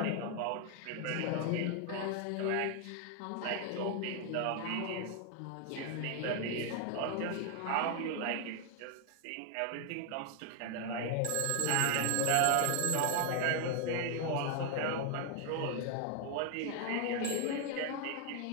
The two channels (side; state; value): both; different; correlation 0.00